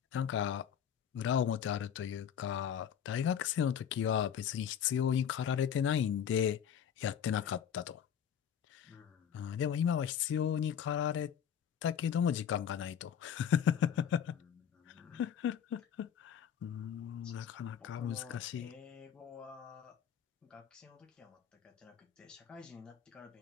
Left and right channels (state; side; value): quieter; right; 8.5 dB